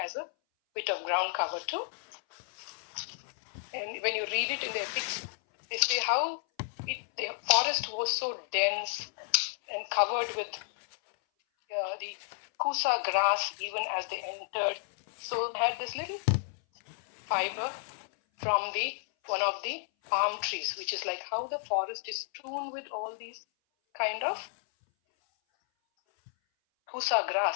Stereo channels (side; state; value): right; silent; 57 dB below the other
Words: as a bit of ground cover too. And when you read it in the epics, they say how the forest was so dense and covered with the kusa grass even as they entered. So they had this little fiber from one of the palm trees, which is like how the forest is strewn with all these kind of kusa